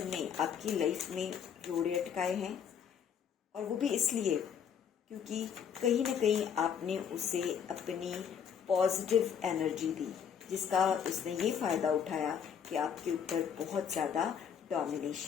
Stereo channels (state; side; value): quieter; right; 7.8 dB